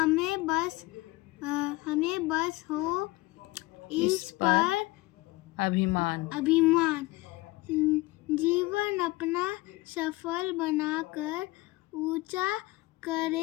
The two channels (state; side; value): quieter; right; 21.0 dB